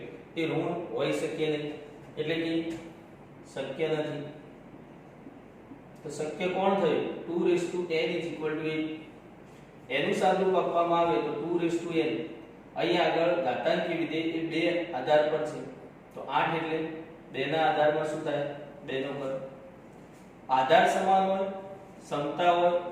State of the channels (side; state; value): both; identical; correlation 1.00